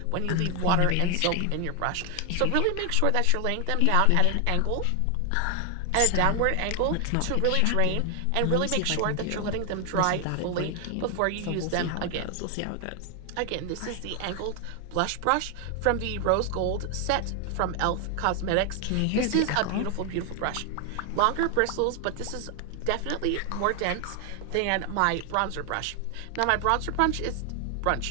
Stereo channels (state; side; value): different; both; correlation 0.00